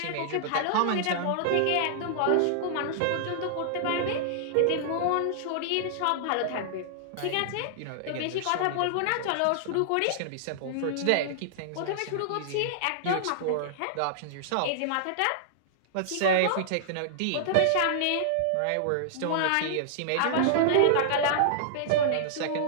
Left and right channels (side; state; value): both; different; correlation -0.01